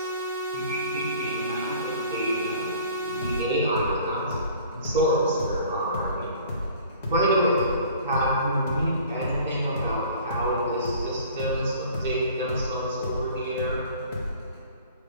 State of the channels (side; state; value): both; inverted; correlation -0.49